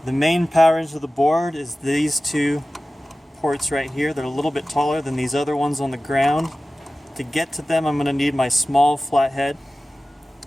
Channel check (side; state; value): both; normal; correlation 0.96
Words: The main power into the board is these two ports right here. They're a little bit taller than these other ones on the ground. To get to them, I'm going to need my small flathead.